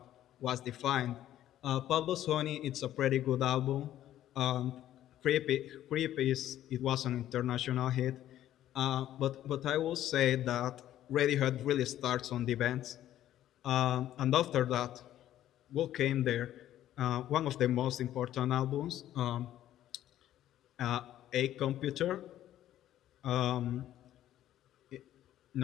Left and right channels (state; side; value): quieter; right; 12.5 dB